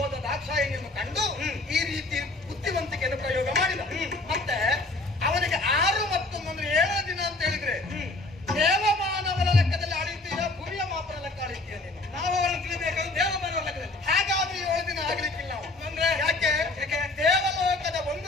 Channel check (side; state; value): right; quieter; 3.0 dB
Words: ದಾಕ್ಷಾಯಿಣಿಯನ್ನು ಕಂಡು ಈ ರೀತಿ ಬುದ್ಧಿವಂತಿಕೆಯನ್ನು ಪ್ರಯೋಗ ಮಾಡಿದ. ಮತ್ತೆ ಅವನಿಗೆ 6 ಮತ್ತು 7 ದಿನ ಅಂತ ಹೇಳಿದ್ರೆ ದೇವಮಾನವರ ಲೆಕ್ಕದಲ್ಲಿ ಆಳಿದ್ದೀಯ, ಭೂಮಿಯ ಮಾಪನ ಲೆಕ್ಕ ಆಳಿದ್ದೀಯ ನೀನು. ನಾವು ಅವರನ್ನು ತಿಳಿಬೇಕಾದ್ರೆ ದೇವಮಾನವರ ಲೆಕ್ಕದಲ್ಲಿ. ಹಾಗಾದ್ರೆ 7 ದಿನ ಆಗ್ಲಿಕ್ಕಿಲ್ಲ ನಾವು. ಅಂದ್ರೆ ಯಾಕೆ? ದೇವಲೋಕದ